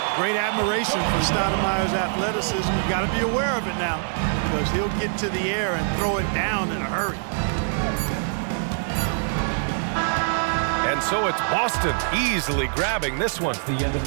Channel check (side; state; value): left; silent; digital silence